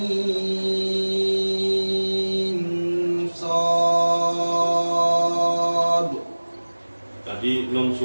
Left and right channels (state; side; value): inverted; both; correlation -1.00